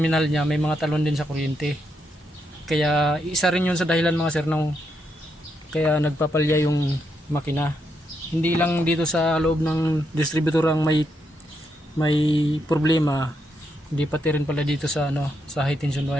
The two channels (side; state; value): both; normal; correlation 0.80